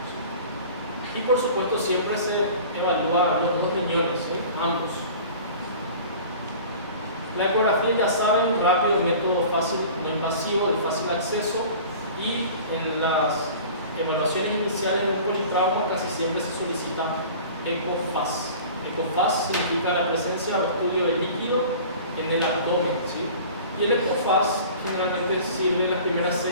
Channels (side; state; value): both; inverted; correlation -0.42